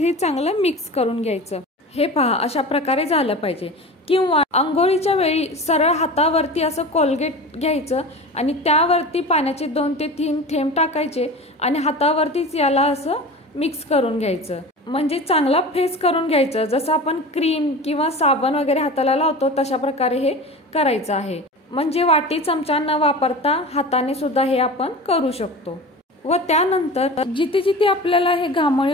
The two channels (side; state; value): both; normal; correlation 0.33